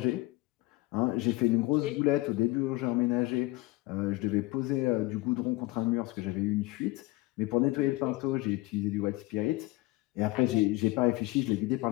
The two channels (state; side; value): quieter; right; 20.2 dB